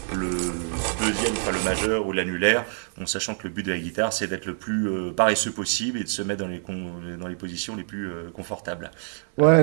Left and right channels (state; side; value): silent; left; 61 dB below the other